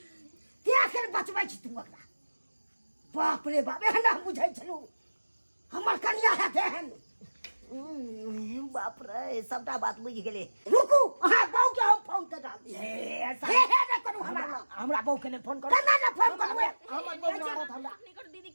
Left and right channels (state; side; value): inverted; both; correlation -1.00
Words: के आखिर बचबै छी तू अकरा बाप रे बाप एहन हम बुझै छलू हमर कन्या है तेहन बाप रे सबटा बात बुझ गेले रुकू अहाँ बहु के हम फोन कर डाल दिए हे हे ना करू हमरा बहू के ने फोन करो कना ना फोन करबे हमर बहू मारत हमरा नहीं कर दीदी की